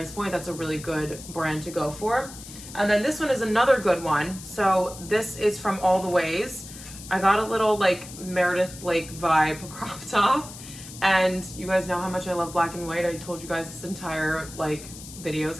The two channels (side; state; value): left; noise; hiss, 14 dB below the sound